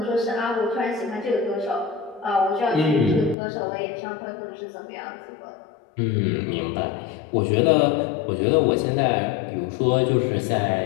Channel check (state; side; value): drops out; right; at 3.4 s